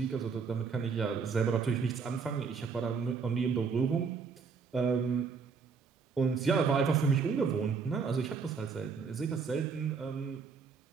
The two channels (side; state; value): left; quieter; 5.4 dB